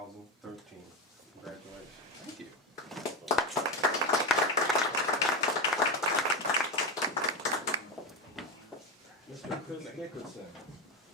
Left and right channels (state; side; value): normal; both; correlation 0.16